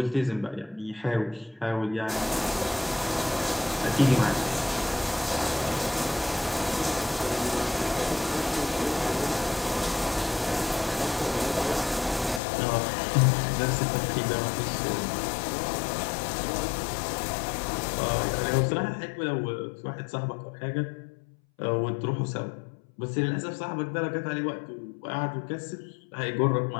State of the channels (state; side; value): drops out; right; at 12.4 s